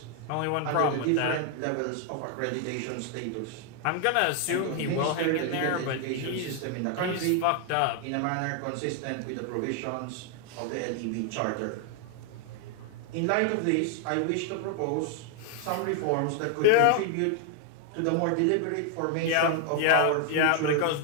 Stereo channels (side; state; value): both; different; correlation 0.00